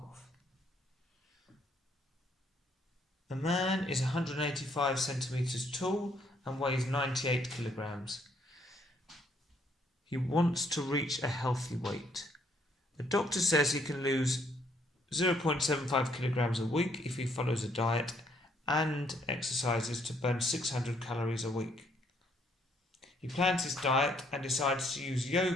A man is 185 centimeters tall and weighs 98 kilograms. He wants to reach a healthy weight. The doctor says he can lose 0.75 kilograms a week if he follows a diet and exercises to burn 600 calories a week. He plans his diet and decides to use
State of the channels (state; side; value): normal; both; correlation 0.68